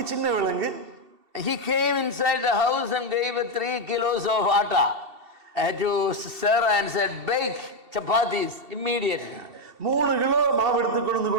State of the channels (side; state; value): left; late; 2.7 ms